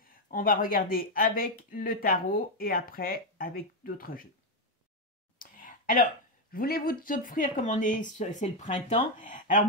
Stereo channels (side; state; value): both; normal; correlation 0.05